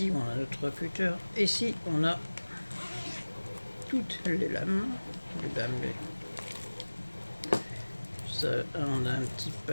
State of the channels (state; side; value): inverted; both; correlation -1.00